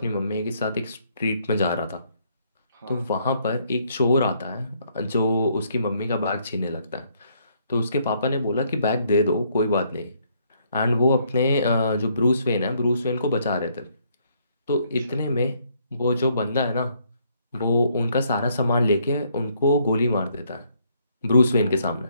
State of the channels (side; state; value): both; inverted; correlation -0.69